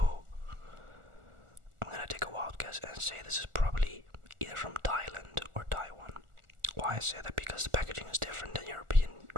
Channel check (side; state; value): left; late; 1.4 ms